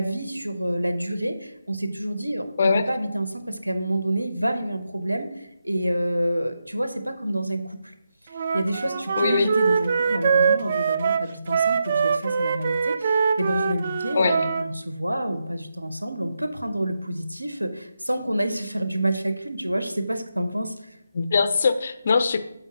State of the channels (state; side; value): inverted; both; correlation -0.85